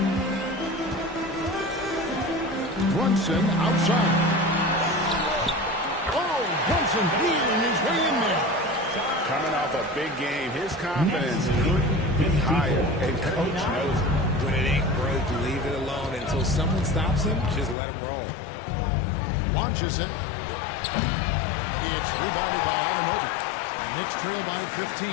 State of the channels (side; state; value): right; drops out; at 17.8 s